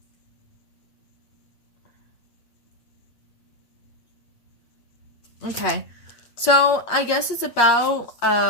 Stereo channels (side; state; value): right; late; 8.6 ms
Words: Okay, so I guess it's about